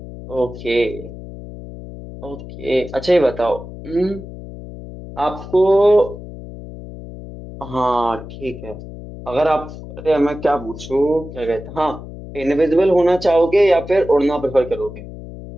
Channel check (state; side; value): noise; left; hum, 13 dB below the sound